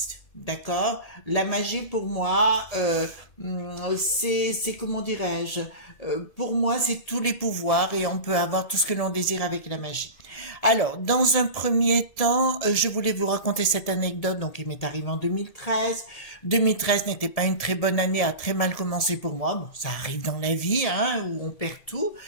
D'accord? La magie, pour moi, c'est comment dirais-je, pour moi, c'est tous les pouvoirs et on peut avoir tout ce que l'on désire avec la magie. Alors, dans un premier temps, je voulais vous raconter cette anecdote, donc il m'est arrivé en 2013. 2013 n'était pas une très bonne année, a très mal commencé pour moi. Bon, ça arrive dans la vie, hein, où on perd tout.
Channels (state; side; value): late; right; 1.7 ms